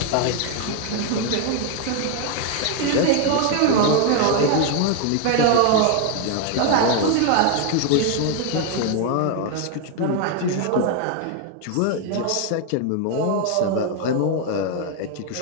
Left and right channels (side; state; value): both; different; correlation 0.01